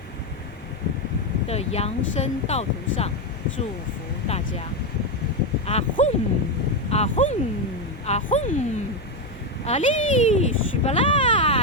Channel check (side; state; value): both; normal; correlation 0.08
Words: 的扬升道途上，祝福大家！啊轰啊轰啊轰！阿里西巴拉，